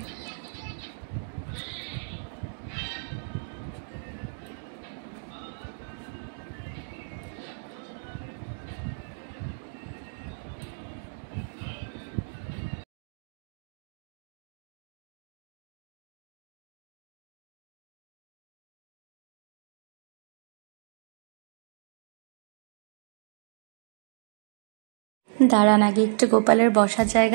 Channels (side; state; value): left; silent; digital silence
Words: দাঁড়ান আগে একটু গোপালের বসার